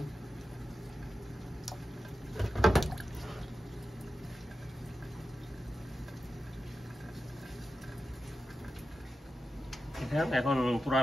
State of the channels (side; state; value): both; normal; correlation 0.92